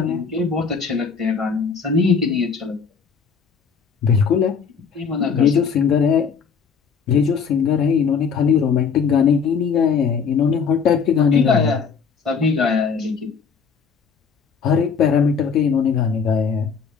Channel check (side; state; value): right; quieter; 6.1 dB